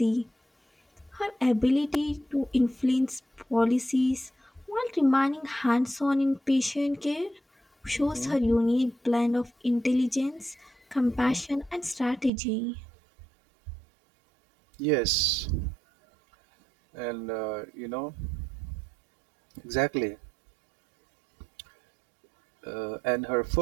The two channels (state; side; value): drops out; left; at 12.3 s